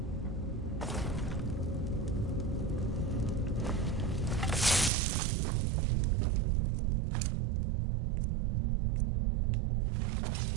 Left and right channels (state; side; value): drops out; left; at 4.9 s